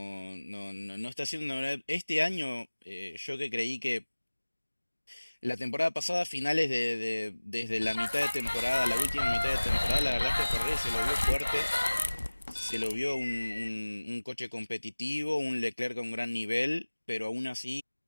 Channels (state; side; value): inverted; both; correlation -1.00